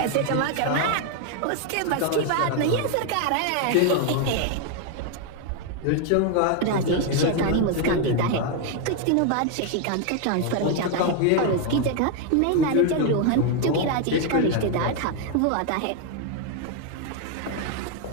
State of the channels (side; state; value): both; different; correlation 0.01